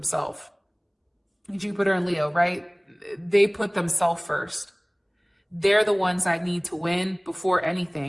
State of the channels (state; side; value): identical; both; correlation 1.00